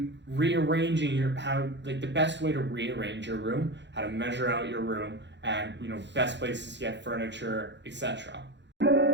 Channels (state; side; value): late; left; 0.52 ms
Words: rearranging the best way to rearrange your room, how to measure out your room, and best places to get furniture, etc.